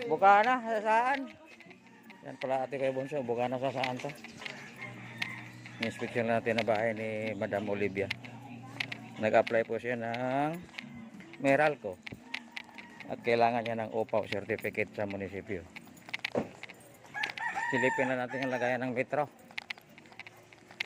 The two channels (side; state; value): both; identical; correlation 1.00